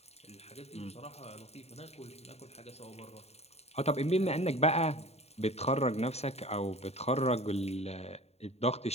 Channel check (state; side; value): late; right; 0.30 ms